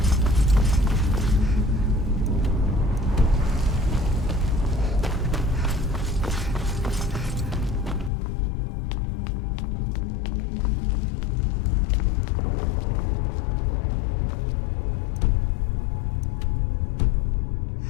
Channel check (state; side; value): drops out; right; at 8.1 s